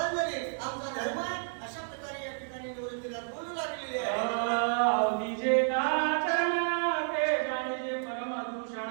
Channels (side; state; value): left; silent; digital silence